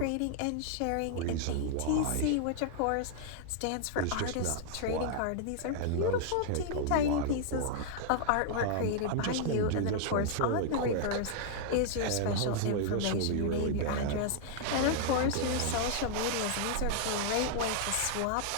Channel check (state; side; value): different; both; correlation -0.01